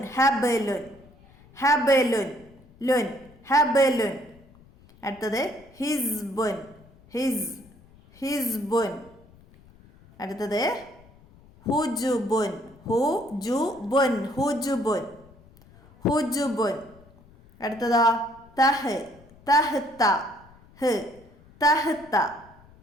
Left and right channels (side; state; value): left; noise; rumble, 26 dB below the sound